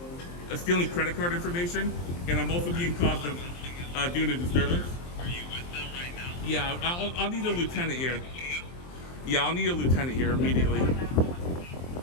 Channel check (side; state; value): right; late; 23 ms